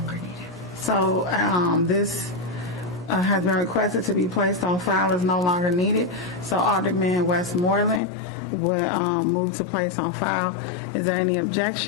needed. So this has been requested to be placed on file, is no longer needed. So Alderman Westmoreland would move to place on file. Is there any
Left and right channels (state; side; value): drops out; right; at 8.0 s